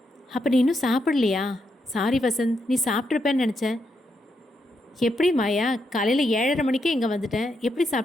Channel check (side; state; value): both; normal; correlation 0.81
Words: அப்போ நீ இன்னும் சாப்பிடலையா? சாரி வசந்த், நீ சாப்பிட்ருப்பேன்னு நினச்சேன். எப்படி மாயா, காலையில் 7:30 மணிக்கே இங்கே வந்துட்டேன், எப்படி